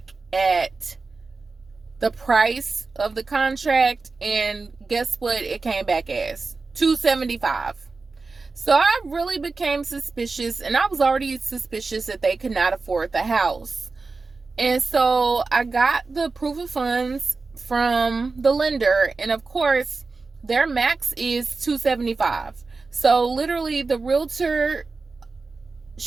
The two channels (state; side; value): quieter; left; 4.0 dB